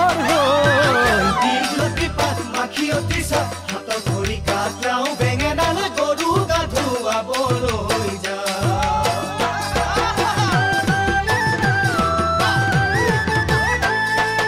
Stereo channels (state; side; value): identical; both; correlation 1.00